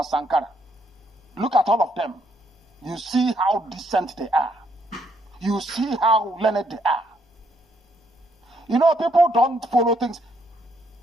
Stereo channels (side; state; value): both; normal; correlation 0.72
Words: Sankara. Look at all of them. You see how decent they are. You see how learned they are. You know, people don't follow things.